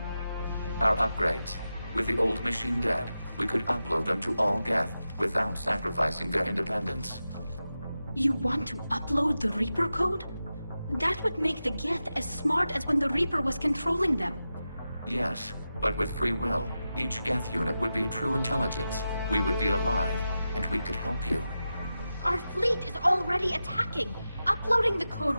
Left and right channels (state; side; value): inverted; both; correlation -0.92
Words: Our upgrades. With the old machine dead, we could upload them to all Geth without sacrificing their independence. You want to upload the Reaper code? That would make the Geth as smart as when the Reaper was controlling them. Yes, but with free will, each Geth unit would be a true intelligence. We would be alive, and we could help you. Our fleet is already attacking. Uploading the code